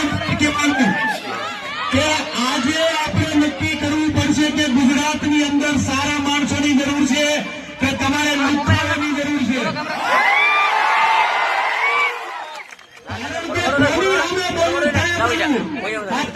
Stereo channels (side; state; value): both; identical; correlation 1.00